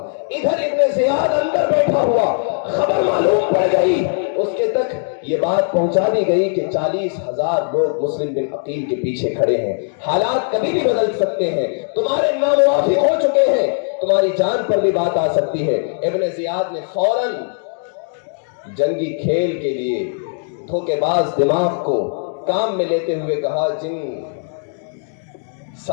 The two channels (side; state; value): right; silent; 67 dB below the other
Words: ادھر ابن زیاد اندر بیٹھا ہوا، خبر معلوم پڑ گئی، اس کے تک یہ بات پہنچا دی گئی کہ 40,000 لوگ مسلم بن عقیل کے پیچھے کھڑے ہیں، حالات کبھی بھی بدل سکتے ہیں، تمہارے ناموافق ہو چکے ہیں، تمہاری جان پر بھی بات آ سکتی ہے۔ ابن زیاد نے فوراً جنگی کھیل کے لیے دھوکے باز دماغ کو کام میں لیتے ہوئے کہا، جن